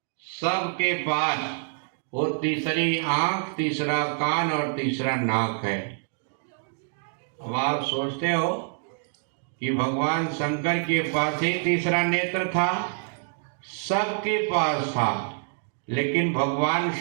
सबके पास वो तीसरी आंख, तीसरा कान और तीसरा नाक है। अब आप सोचते हो कि भगवान शंकर के पास ही तीसरा नेत्र था? सबके पास था, लेकिन भगवान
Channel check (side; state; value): left; silent; digital silence